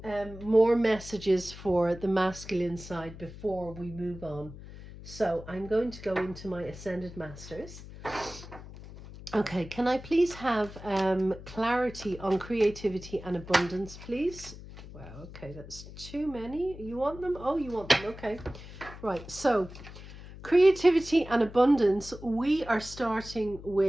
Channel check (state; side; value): noise; left; hum, 15 dB below the sound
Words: more messages for the masculine side before we move on. So I'm going to go into my Ascended Masters. Okay, can I please have clarity on creativity and abundance, please? Wow, okay, that's too many. You want them? Oh, you want them. Okay. Right, so creativity and abundance, we are starting